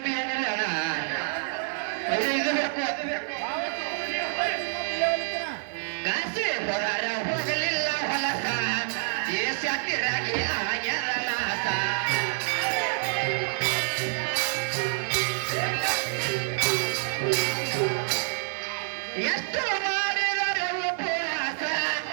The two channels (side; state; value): left; silent; digital silence